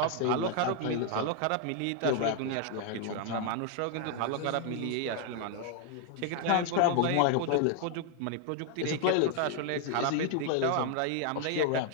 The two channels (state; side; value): different; both; correlation 0.00